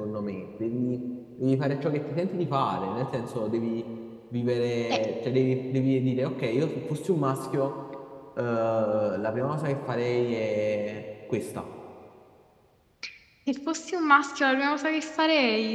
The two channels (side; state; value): both; identical; correlation 1.00